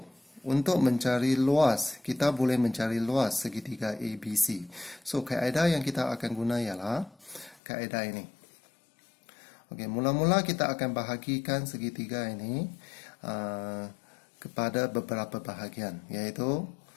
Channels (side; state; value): right; drops out; at 7.6 s